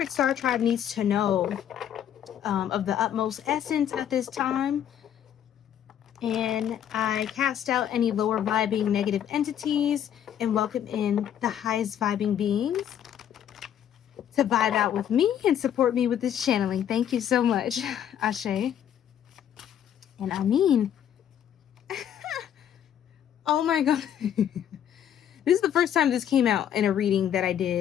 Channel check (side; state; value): right; quieter; 9.8 dB